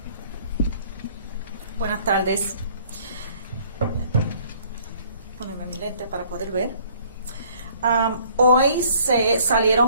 Buenas tardes. Ponerme mi lente para poder ver. Hoy se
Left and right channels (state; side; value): inverted; both; correlation -0.58